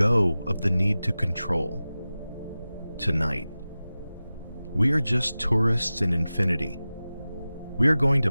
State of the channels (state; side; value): inverted; both; correlation -0.96